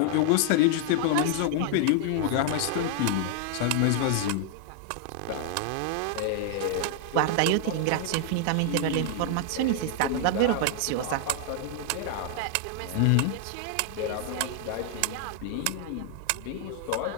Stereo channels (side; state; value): both; different; correlation 0.00